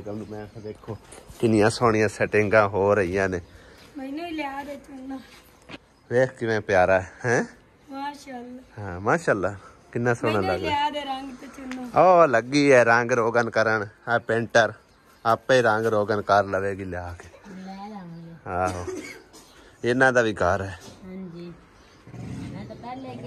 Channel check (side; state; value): both; identical; correlation 1.00